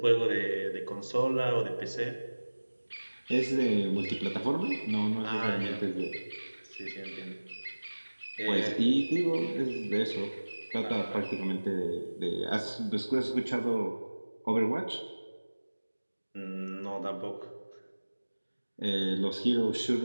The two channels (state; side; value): inverted; both; correlation -1.00